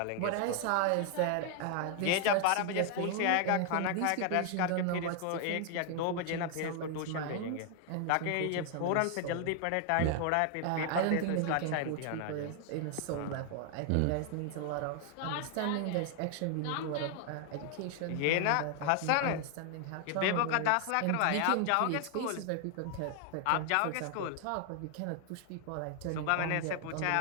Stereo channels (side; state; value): both; different; correlation 0.00